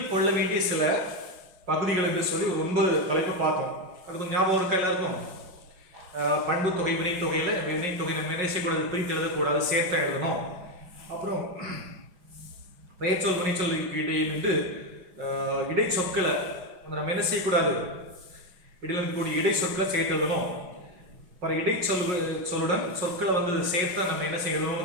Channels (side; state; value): left; late; 5.6 ms